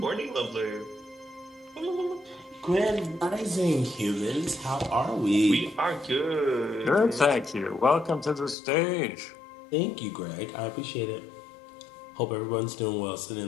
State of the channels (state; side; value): drops out; right; at 8.6 s